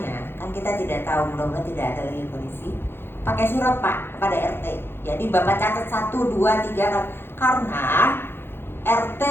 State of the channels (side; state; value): right; late; 0.11 ms